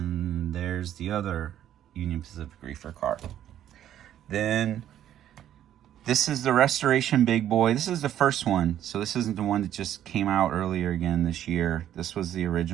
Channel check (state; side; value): quieter; left; 11.2 dB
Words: there's the other Union Pacific reefer car. Then This is the Restoration Big Boy. This is the first one. So this isn't the one that just came out earlier again this year. This was the